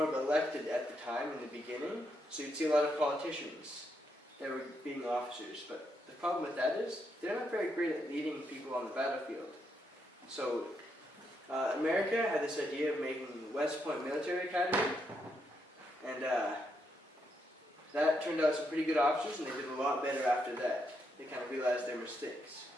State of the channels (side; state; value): both; normal; correlation 0.79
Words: of elected at the time in the beginning, so you'd see a lot of politicians that were being officers. But the problem with that is, they're not very great at leading people on the battlefield. So America had this idea of making West Point Military Academy, and that turned out some pretty good officers, and they did a lot better after that. They kind of realized their mistakes.